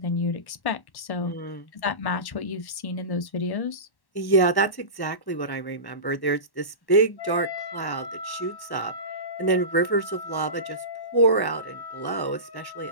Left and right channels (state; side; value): late; right; 1.1 ms